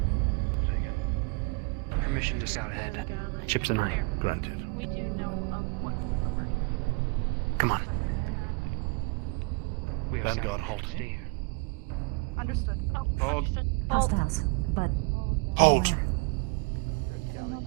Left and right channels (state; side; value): quieter; left; 29.7 dB